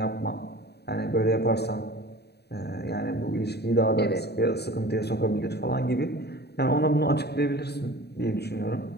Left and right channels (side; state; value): right; late; 0.48 ms